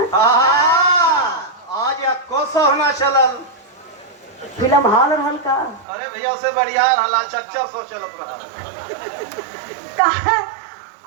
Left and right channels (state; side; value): drops out; left; at 5.9 s